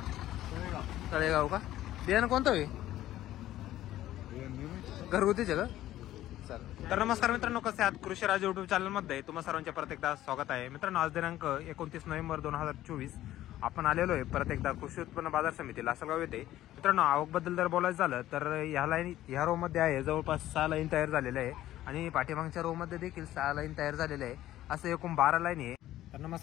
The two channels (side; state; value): right; quieter; 14.0 dB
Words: तळेगाव का? बियाणं कोणतं आहे? घरगुतीचे का? तर नमस्कार मित्रांनो, कसे आहात? कृषी राज युट्यूब चॅनल मध्ये तुम्हा सर्वांचे परत एकदा स्वागत आहे. मित्रांनो, आज दिनांक 29 नोव्हेंबर 2024 आपण आलेलो आहे परत एकदा कृषी उत्पन्न बाजार समिती लासलगाव येथे. मित्रांनो, आवक बद्दल जर बोलायचं झालं तर ह्या रो मध्ये आहे जवळपास 6 लाईन तयार झालेले आहे आणि पाठीमागच्या रो मध्ये देखील 6 लाईन तयार झालेले आहे. असं एकूण 12 लाईन आहे. तर